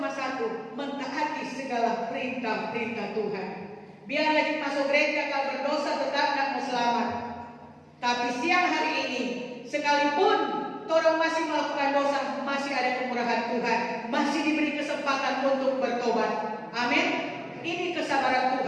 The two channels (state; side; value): identical; both; correlation 1.00